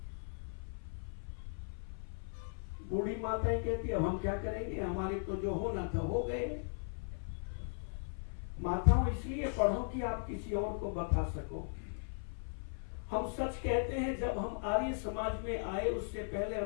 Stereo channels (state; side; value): silent; right; 53 dB below the other